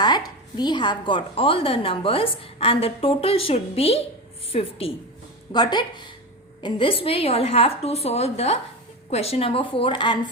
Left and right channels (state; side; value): normal; both; correlation 0.22